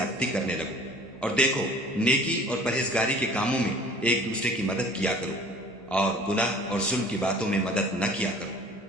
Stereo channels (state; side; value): normal; both; correlation 0.48